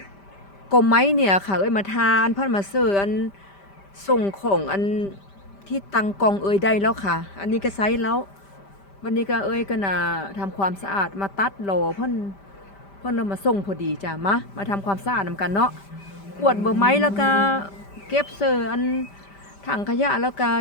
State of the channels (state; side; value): late; right; 5.1 ms